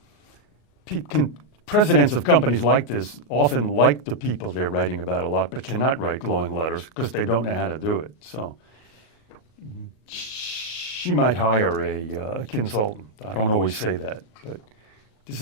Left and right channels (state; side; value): late; right; 38 ms